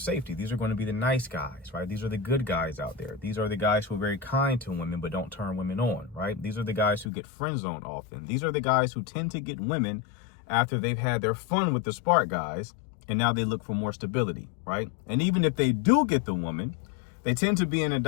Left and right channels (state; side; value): drops out; right; at 7.1 s